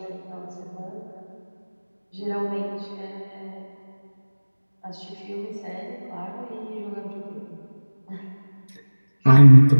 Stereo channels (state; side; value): inverted; both; correlation -1.00